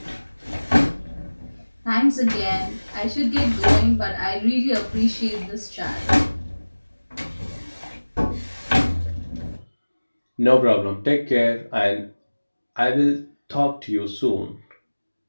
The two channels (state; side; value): inverted; both; correlation -1.00